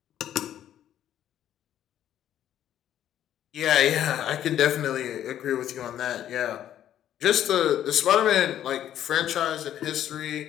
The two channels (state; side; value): quieter; right; 11.2 dB